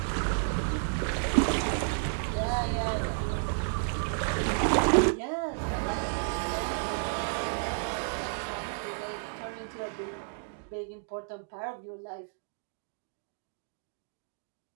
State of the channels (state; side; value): silent; left; digital silence